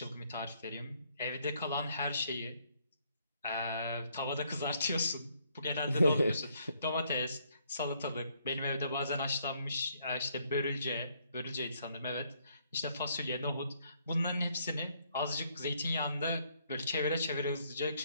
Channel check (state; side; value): inverted; both; correlation -0.69